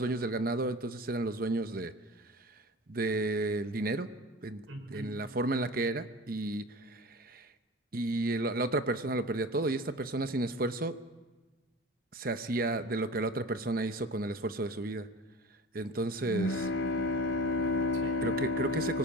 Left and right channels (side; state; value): both; normal; correlation 0.36